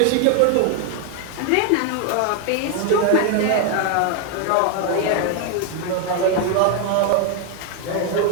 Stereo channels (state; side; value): different; both; correlation 0.01